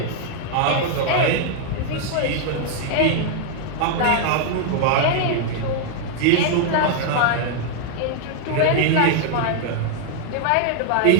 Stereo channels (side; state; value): both; different; correlation 0.00